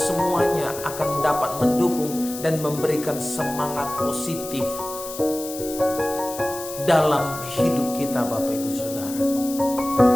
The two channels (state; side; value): noise; left; hiss, 11 dB below the sound